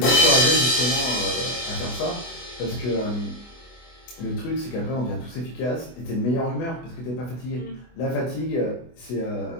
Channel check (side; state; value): right; late; 24 ms